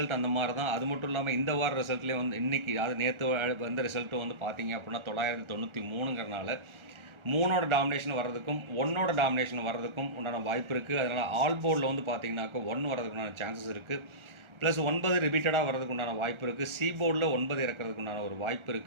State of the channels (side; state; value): left; late; 1.4 ms